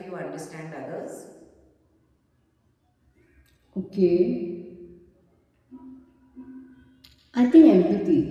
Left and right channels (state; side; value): identical; both; correlation 1.00